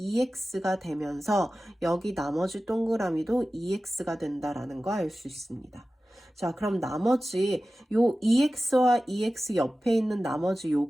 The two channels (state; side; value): normal; both; correlation 0.95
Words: 되면서 여기 나머지 동그라미도 2x가 된다라는 거 알 수 있습니다. 자, 그럼 나머지 요 2x와 2x 옆에 있는 나머지